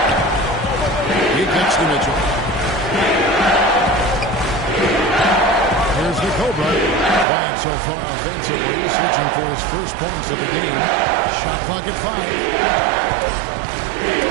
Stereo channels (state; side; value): drops out; left; at 7.2 s